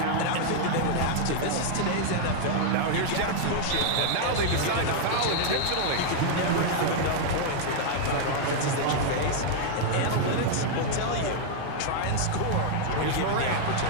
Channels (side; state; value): both; different; correlation -0.01